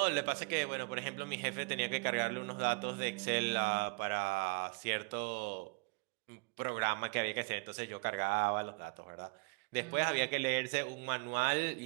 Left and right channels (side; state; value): left; quieter; 32.3 dB